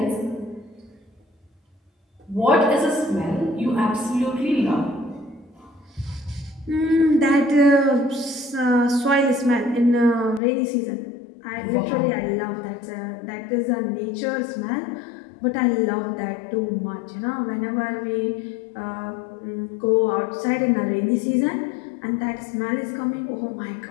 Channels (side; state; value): right; drops out; at 10.4 s